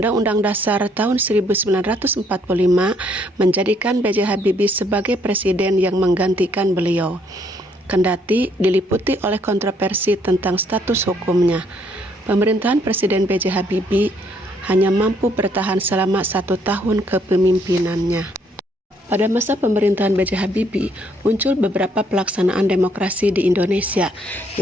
Dasar tahun 1945 menjadikan B.J. Habibie sebagai presiden yang menggantikan beliau. Kendati diliputi oleh kontroversi tentang status hukumnya, pemerintahan Presiden B.J. Habibie hanya mampu bertahan selama 1 tahun kepemimpinannya. Pada masa pemerintahan B.J. Habibie, muncul beberapa pelaksanaan demokrasi di Indonesia.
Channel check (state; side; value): normal; both; correlation 0.68